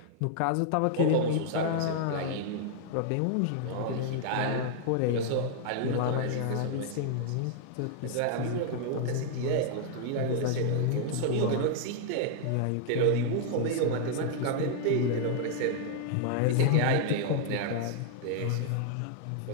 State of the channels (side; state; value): both; different; correlation -0.01